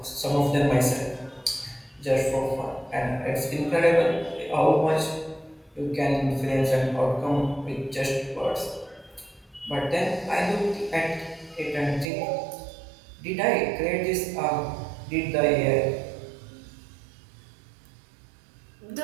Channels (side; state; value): left; drops out; at 12.1 s